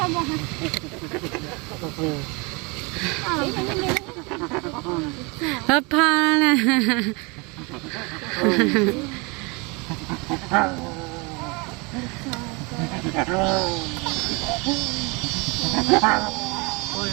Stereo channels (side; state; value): left; quieter; 28.6 dB